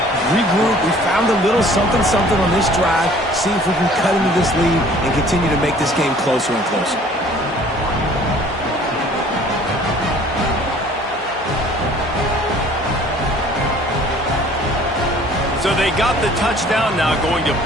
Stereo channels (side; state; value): both; normal; correlation 0.53